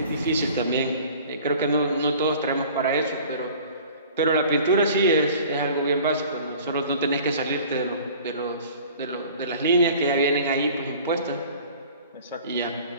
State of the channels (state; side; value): inverted; both; correlation -0.46